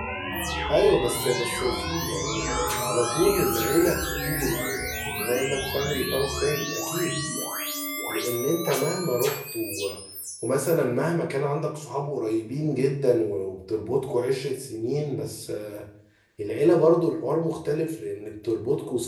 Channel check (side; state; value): both; identical; correlation 1.00